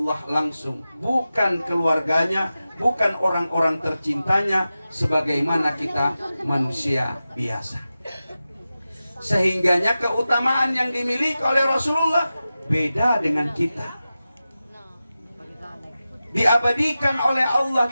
langsung, bukan keluarganya, bukan orang-orang tercintanya, sebagaimana kita manusia biasa. Sehingganya keutamaan yang dimiliki oleh Rasulullah beda dengan kita. Diabadikan oleh Allah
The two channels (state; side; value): inverted; both; correlation -0.94